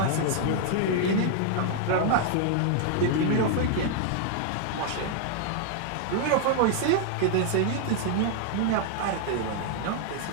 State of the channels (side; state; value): both; different; correlation 0.00